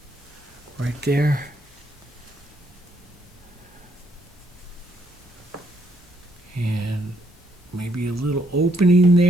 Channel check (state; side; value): normal; both; correlation 0.72